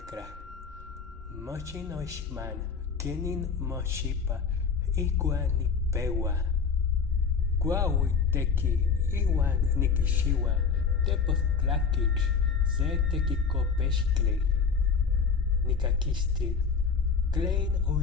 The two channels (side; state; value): right; quieter; 5.6 dB